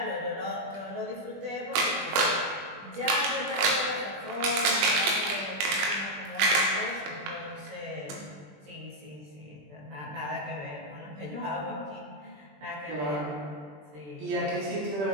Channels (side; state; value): left; late; 20 ms